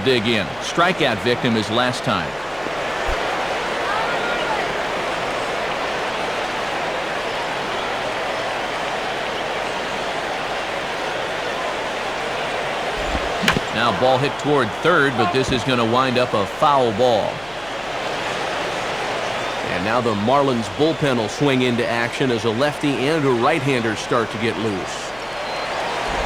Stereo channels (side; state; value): left; noise; hum, 23 dB below the sound